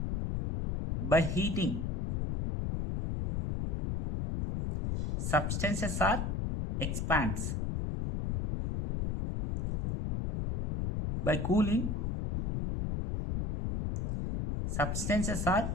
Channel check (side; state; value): left; noise; rumble, 1 dB below the sound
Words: by heating substances are expands. By cooling substances